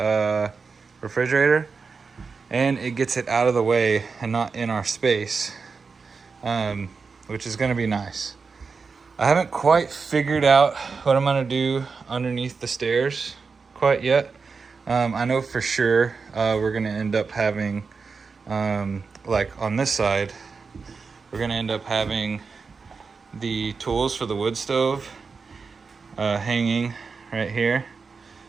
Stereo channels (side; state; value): left; quieter; 4.9 dB